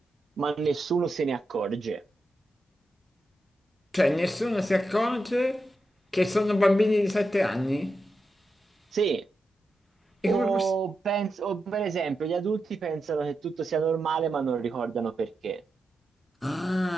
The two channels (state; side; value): normal; both; correlation 0.88